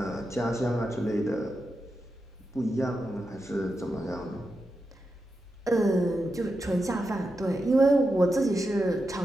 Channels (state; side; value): normal; both; correlation 0.88